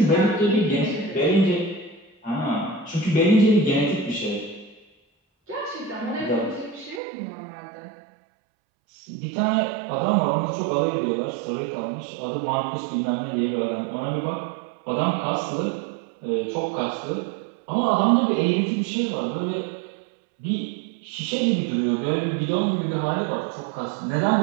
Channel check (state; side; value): drops out; left; at 7.0 s